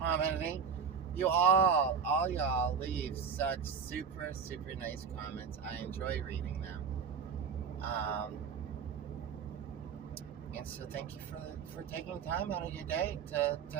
You all y'all leave such super, super nice comments. I enjoy reading them. And so thank you for taking time out of your day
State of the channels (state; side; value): quieter; left; 6.4 dB